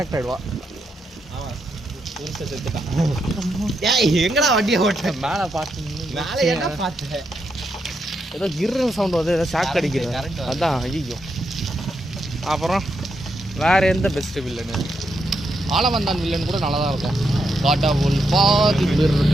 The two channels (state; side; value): normal; both; correlation 0.81